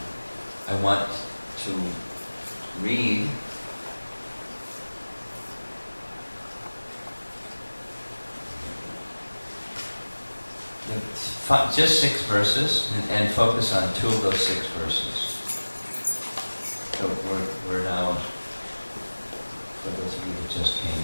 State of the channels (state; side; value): inverted; both; correlation -1.00